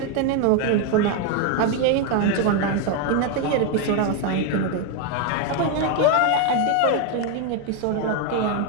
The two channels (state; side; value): different; both; correlation 0.01